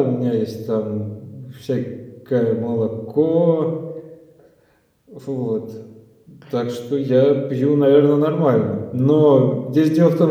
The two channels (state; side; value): identical; both; correlation 1.00